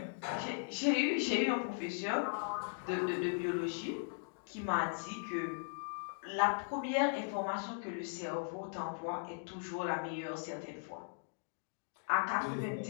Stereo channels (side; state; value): right; silent; digital silence